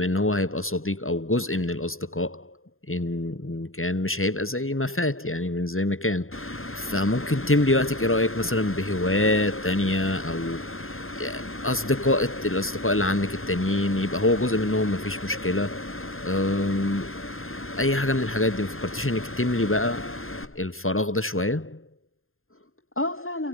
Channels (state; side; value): late; right; 0.61 ms